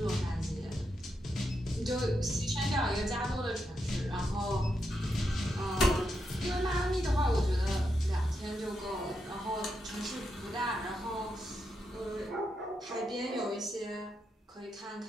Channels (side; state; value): both; normal; correlation 0.84